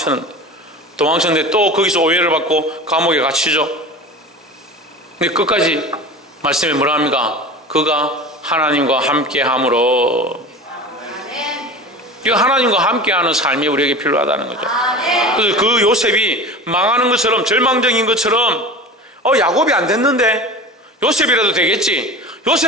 또 거기서 오해를 받고 감옥에 갇히죠. 근데 끝까지 말씀에 뭐라 합니까? 그가 하나님과 함께함으로. 이거 하나님과 함께하는 삶이 우리에게 필요하다는 거죠. 그래서 그 요셉이 망하는 것처럼, 절망적인 것처럼, 야곱이 안 됐는데 요셉이라도 되겠지.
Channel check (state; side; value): normal; both; correlation 0.34